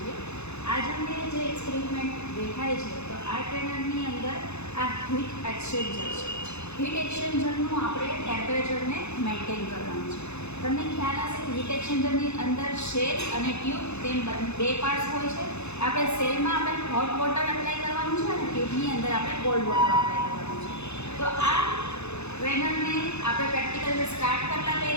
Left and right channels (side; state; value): right; late; 0.81 ms